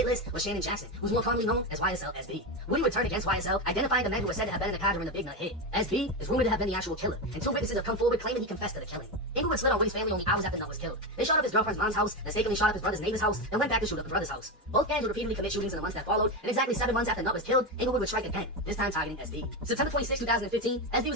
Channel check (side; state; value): both; normal; correlation 0.14